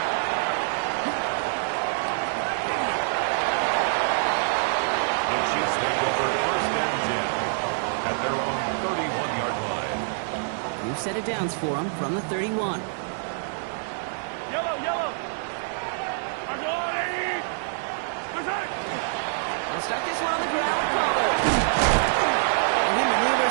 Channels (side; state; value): left; silent; digital silence